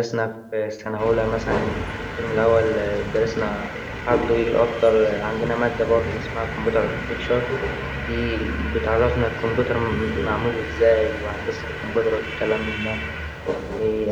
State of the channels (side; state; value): both; identical; correlation 1.00